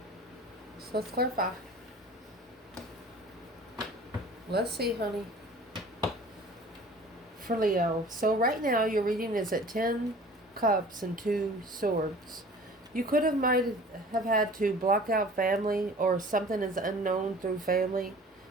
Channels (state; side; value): normal; both; correlation 0.45